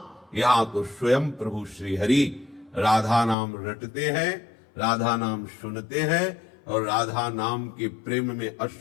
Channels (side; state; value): right; drops out; at 3.4 s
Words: तो स्वयं प्रभु श्री हरि राधा नाम रटते हैं, राधा नाम सुनते हैं और राधा नाम के प्रेम में